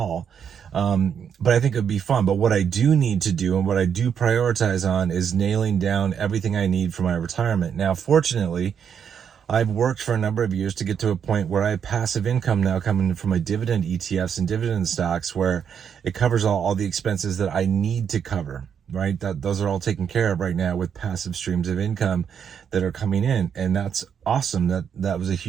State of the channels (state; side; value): quieter; left; 7.7 dB